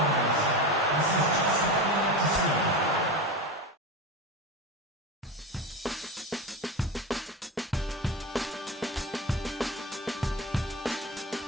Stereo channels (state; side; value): normal; both; correlation 0.23